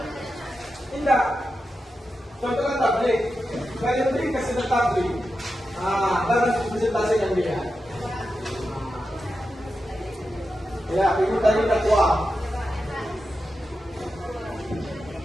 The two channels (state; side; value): normal; both; correlation 0.90